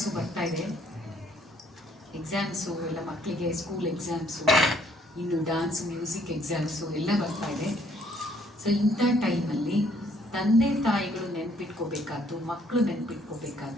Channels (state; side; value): normal; both; correlation 0.65